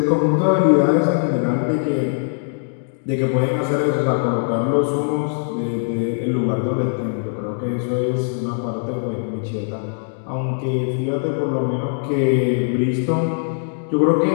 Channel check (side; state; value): right; silent; digital silence